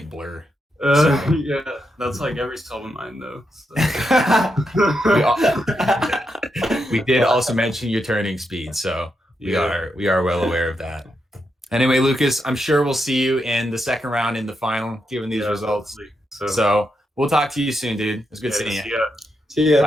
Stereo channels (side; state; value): both; normal; correlation 0.83